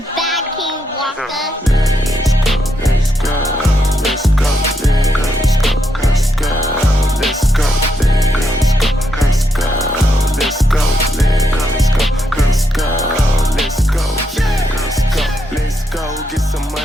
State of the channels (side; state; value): both; normal; correlation 0.80